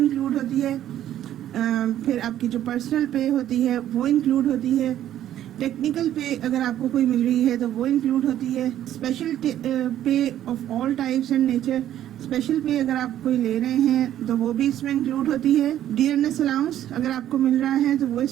होती है, फिर आपकी जो पर्सनल पे होती है वो इंक्लूड होती है, टेक्निकल पे अगर आपको कोई मिल रही है तो वो इंक्लूड होती है, स्पेशल पे of all types and nature, special पे अगर आप कोई ले रहे हैं तो वो भी इसमें इंक्लूड होती है, डियरनेस अलाउंस अगर आपको मिल रहा है तो वो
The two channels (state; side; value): quieter; left; 11.8 dB